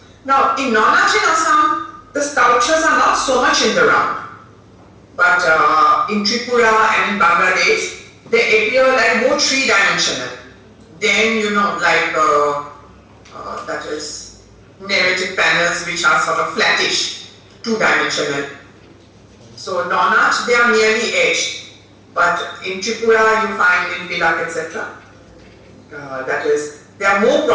Now in Nonach in Assam, the sculptures are not so much in the round. But in Tripura and in Bangladesh, they appear like more three-dimensional. Then like that is narrative panels which are sort of flattish, two-dimensional. So Nonach, they are merely edged. But in Tripura you find in Pilak, etc. That is, they are more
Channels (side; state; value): both; identical; correlation 1.00